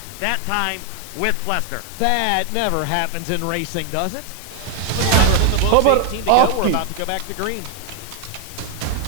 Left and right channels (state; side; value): different; both; correlation 0.00